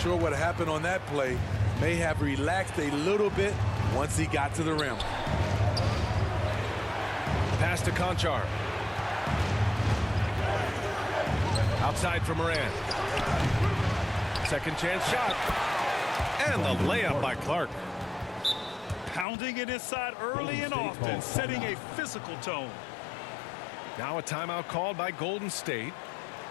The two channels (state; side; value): drops out; right; at 19.2 s